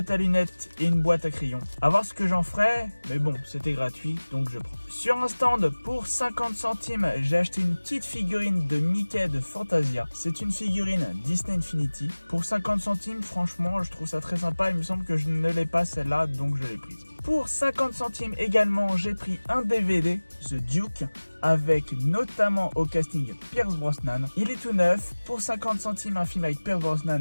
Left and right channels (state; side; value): inverted; both; correlation -1.00